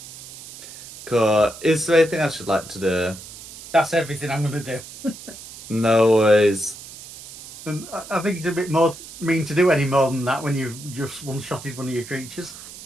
Cool. Is there anything else you'd like to do? That's everything I'm going to do. No worries. And I think it's a bit more mean to do any more than that when you've just one-shotted one of your creatures.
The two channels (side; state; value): right; noise; hiss, 15 dB below the sound